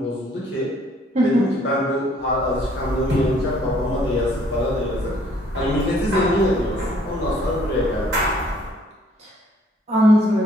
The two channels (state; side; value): normal; both; correlation 0.62